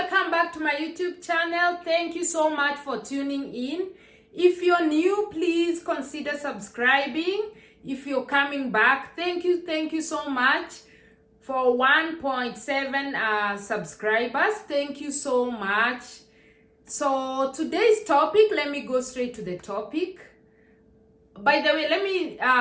back to my YouTube channel. Thank you so much for tuning in. If you're new, please consider subscribing. If you're coming back, thank you so much for 1.7 subscribers. Thank you so much. So today's topic, let me go straight to the topic. By the way,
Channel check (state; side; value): identical; both; correlation 1.00